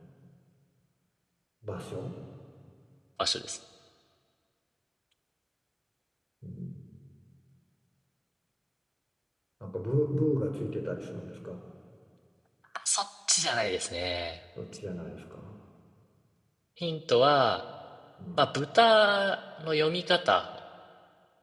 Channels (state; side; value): identical; both; correlation 1.00